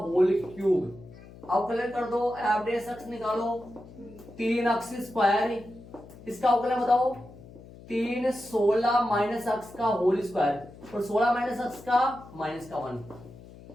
क्यूब। अवकलन कर दो, f(x) निकालो, 3x स्क्वायर, इसका अवकलन बताओ, 3 16 माइनस एक्स का होल स्क्वायर, और 16 माइनस एक्स का माइनस का 1।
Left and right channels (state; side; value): noise; left; hum, 19 dB below the sound